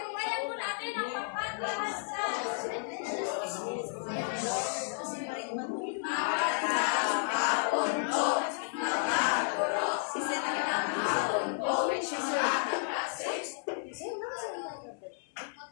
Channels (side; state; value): right; silent; 56 dB below the other